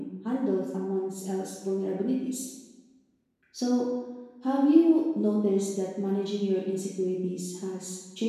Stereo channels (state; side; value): identical; both; correlation 1.00